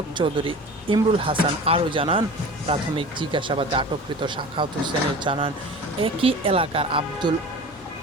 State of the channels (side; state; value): both; normal; correlation 0.37